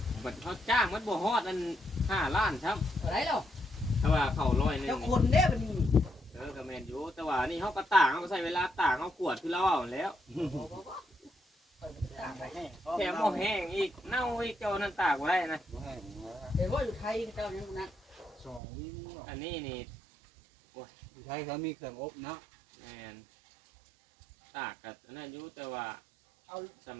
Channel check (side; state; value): left; drops out; at 18.6 s